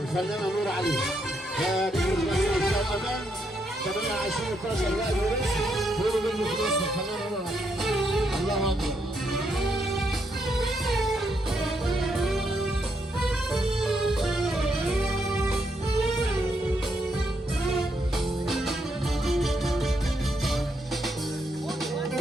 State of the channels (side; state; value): both; normal; correlation 0.77